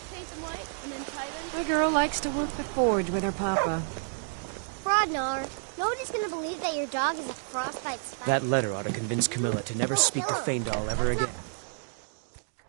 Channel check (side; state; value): left; silent; digital silence